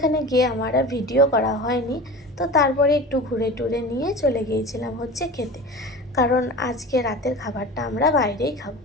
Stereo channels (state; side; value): normal; both; correlation 0.34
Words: গিয়ে আমার আর ভিডিও করা হয়নি। তো তারপরে একটু ঘুরে টুরে নিয়ে চলে গিয়েছিলাম হচ্ছে খেতে, কারণ আজকে রাতের খাবারটা আমরা বাইরেই খাবো।